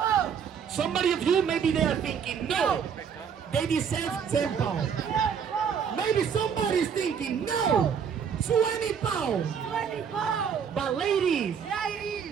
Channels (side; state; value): left; quieter; 7.2 dB